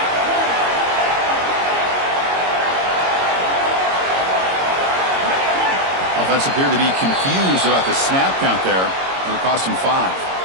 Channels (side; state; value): left; late; 22 ms